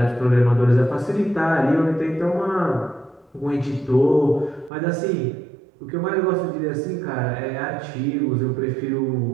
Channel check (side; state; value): left; drops out; at 4.7 s